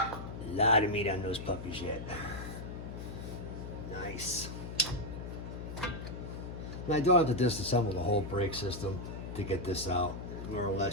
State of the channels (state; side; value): noise; left; hum, 8 dB below the sound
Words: lot of meat on those puppies yet. Nice. And I don't have to disassemble the whole brake system to get this out. More or